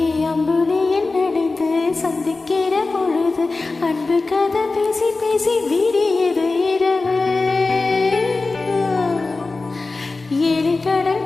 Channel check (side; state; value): right; quieter; 3.6 dB